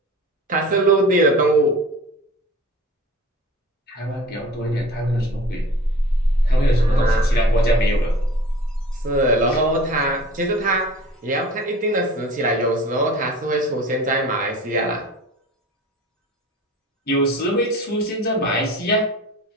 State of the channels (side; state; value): both; normal; correlation 0.41